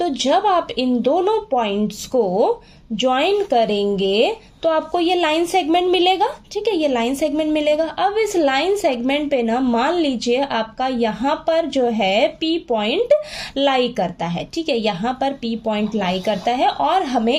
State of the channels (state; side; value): identical; both; correlation 1.00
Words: जब आप इन दोनों पॉइंट्स को ज्वाइन करेंगे तो आपको ये लाइन सेगमेंट मिलेगा, ठीक है, ये लाइन सेगमेंट मिलेगा। अब इस लाइन सेगमेंट पे ना मान लीजिए आपका यहाँ पर जो है P पॉइंट लाई करता है, ठीक है, यहाँ पर P पॉइंट लाई करता है और